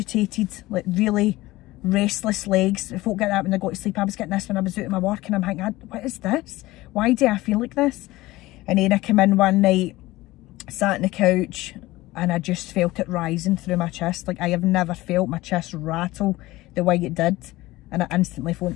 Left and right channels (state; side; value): quieter; right; 18.5 dB